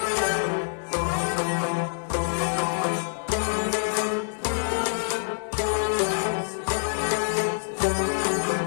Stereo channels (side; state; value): right; silent; 61 dB below the other